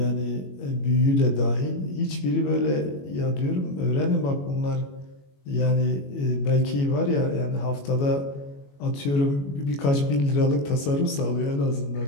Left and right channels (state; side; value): late; right; 21 ms